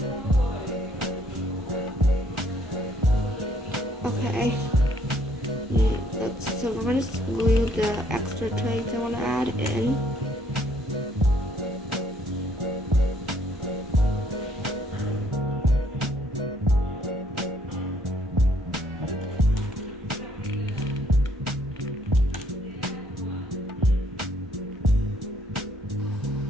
Okay. So we're going to glue the extra trays I want to add in.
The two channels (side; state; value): both; normal; correlation 0.66